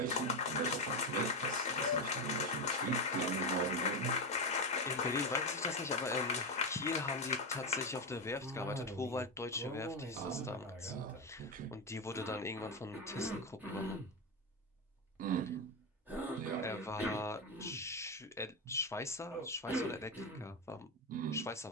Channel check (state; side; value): normal; both; correlation 0.11